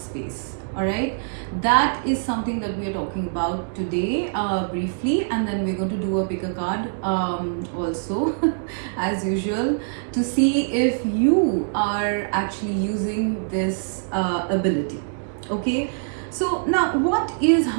All right, that is something that we are talking about today briefly, and then we're going to do a pick a card also as usual to see if you are actually using this ability. Okay, so now what is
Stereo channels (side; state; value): left; silent; digital silence